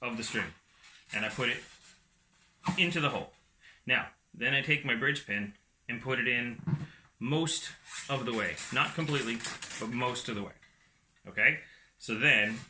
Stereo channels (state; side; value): identical; both; correlation 1.00